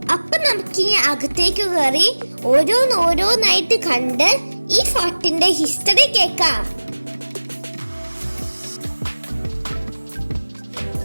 അപ്പൊ നമുക്കിനി അകത്തേക്ക് കയറി ഓരോന്നായിട്ട് കണ്ട് ഈ ഫോർട്ടിന്റെ ഹിസ്റ്ററി കേൾക്കാം.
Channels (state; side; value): inverted; both; correlation -1.00